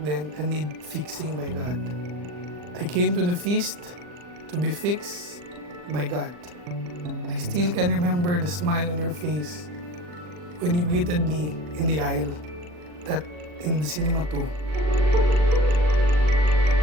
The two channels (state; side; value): late; left; 40 ms